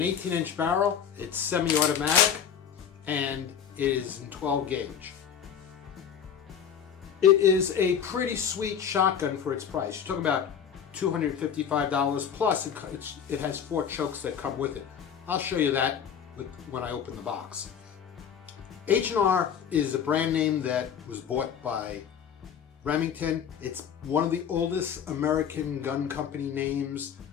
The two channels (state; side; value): quieter; right; 8.1 dB